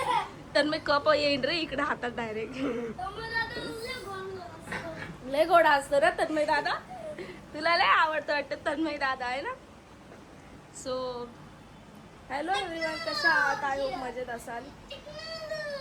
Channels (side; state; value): both; identical; correlation 1.00